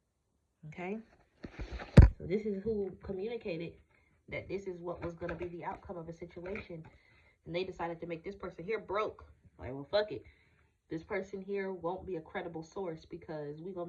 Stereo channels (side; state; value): both; identical; correlation 1.00